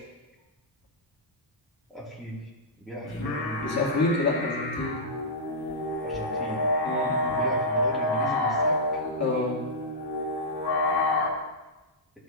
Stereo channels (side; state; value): both; normal; correlation -0.12